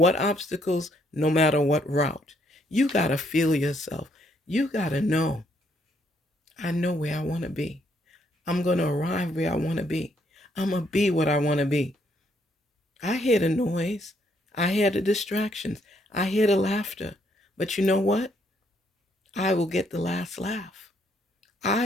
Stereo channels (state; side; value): normal; both; correlation 0.71